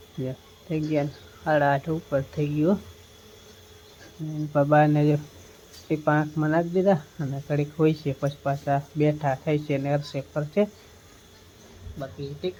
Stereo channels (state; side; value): identical; both; correlation 1.00